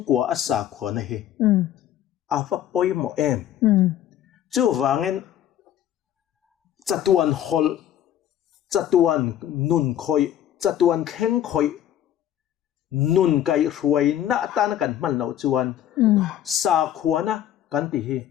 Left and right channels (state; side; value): quieter; right; 11.2 dB